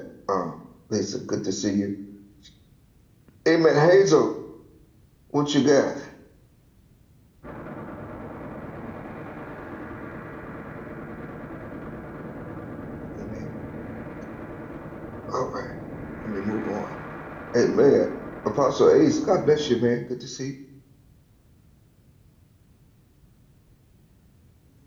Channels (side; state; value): both; identical; correlation 1.00